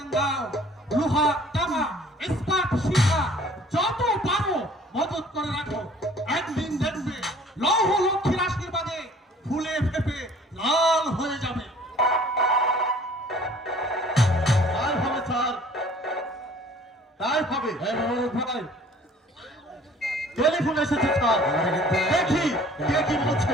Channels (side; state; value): both; normal; correlation 0.52